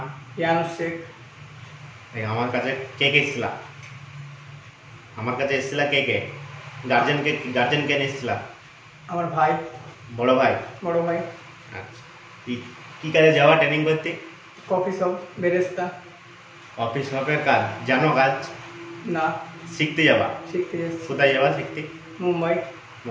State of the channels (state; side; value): identical; both; correlation 1.00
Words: ইয়ানুস শেখ। আমার কাছে কে কে এসেছিলা? আমার কাছে এসেছিলা কে কে? গার্জেন কে নিয়ে এসেছিলা? আমার ভাই। বড় ভাই? বড় ভাই। আচ্ছা, কি কাজে যাওয়া ট্রেনিং করতে? কফি শপ, বেরেস্তা। অফিস শপের কাজ জানো? কাজ না, শিখতে যাবা? শিখতে যাচ্ছি। কোথায় যাবা শিখতে? মুম্বাই।